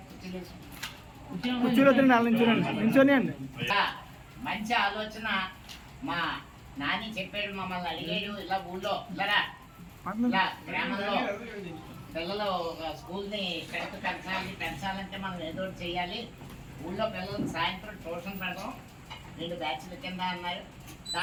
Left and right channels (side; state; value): both; identical; correlation 1.00